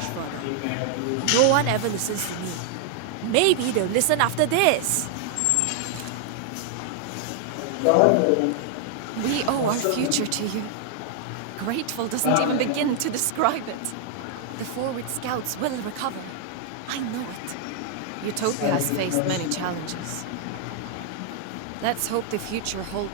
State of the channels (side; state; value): both; different; correlation 0.00